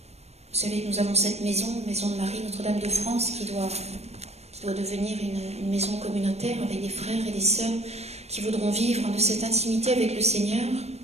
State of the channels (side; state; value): left; late; 0.31 ms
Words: vous savez, nous avons cette maison de Marie, Notre-Dame de France, qui doit devenir une maison communautaire avec des frères et des sœurs qui voudront vivre de cette intimité avec le Seigneur,